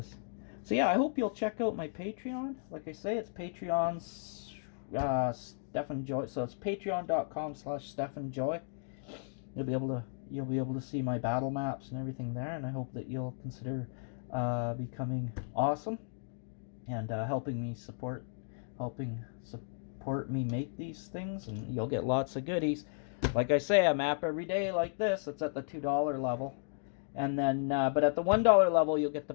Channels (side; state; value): right; silent; digital silence